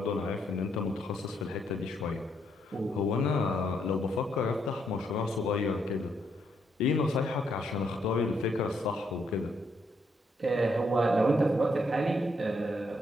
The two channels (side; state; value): both; normal; correlation 0.75